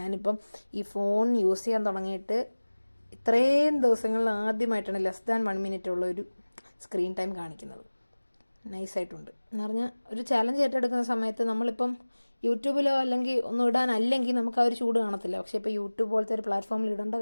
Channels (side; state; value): both; inverted; correlation -1.00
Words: ഈ ഫോൺ യൂസ് ചെയ്യാൻ തുടങ്ങിയിട്ട് ഇത്രയും ദിവസങ്ങളിൽ ആദ്യമായിട്ടാണ് <1 minute ഉള്ളൊരു സ്ക്രീൻ ടൈം കാണിക്കുന്നത്. നൈസായിട്ടുണ്ട് എന്ന് പറഞ്ഞാൽ ഒരു ചാലഞ്ച് ഏറ്റെടുക്കുന്ന സമയത്ത് നമ്മളിപ്പം യൂട്യൂബിലോ അല്ലെങ്കിൽ ഒന്നും ഇടാനല്ലെങ്കിൽ നമുക്ക് ആ ഒരു ചൂട് കാണത്തില്ല. പക്ഷേ ഇപ്പോൾ യൂട്യൂബ് പോലത്തെ ഒരു പ്ലാറ്റ്ഫോമിൽ ഇടേണ്ട